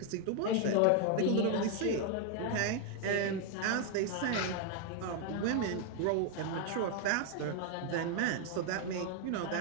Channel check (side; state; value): both; different; correlation 0.00